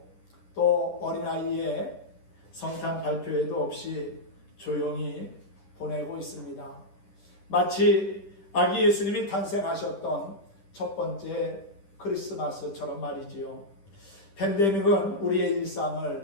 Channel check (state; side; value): late; right; 10 ms